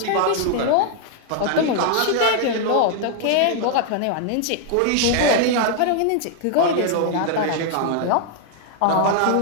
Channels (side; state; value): both; different; correlation 0.00